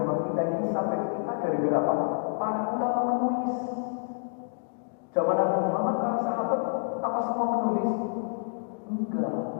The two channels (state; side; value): silent; right; digital silence